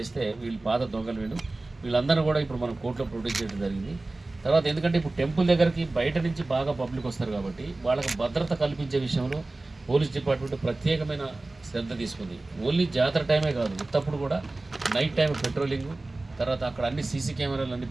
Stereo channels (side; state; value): left; quieter; 3.0 dB